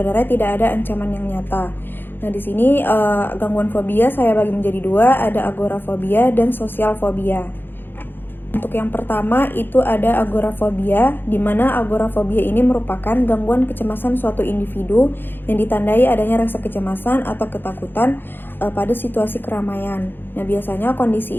tidak ada ancaman yang nyata. Nah, di sini gangguan fobia saya bagi menjadi dua, ada agorafobia dan sosial fobia. Untuk yang pertama itu ada agorafobia, di mana agorafobia ini merupakan gangguan kecemasan suatu individu yang ditandai adanya rasa kecemasan atau ketakutan pada situasi keramaian. Nah, biasanya kondisi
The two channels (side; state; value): right; late; 0.099 ms